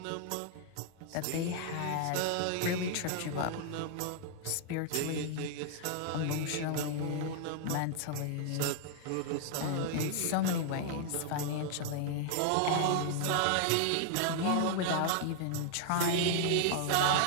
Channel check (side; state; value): both; different; correlation 0.00